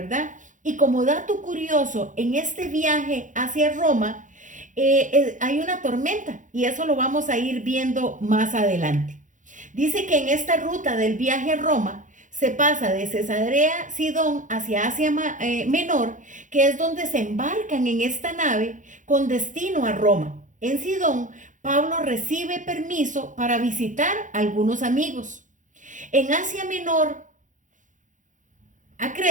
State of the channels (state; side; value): late; left; 0.37 ms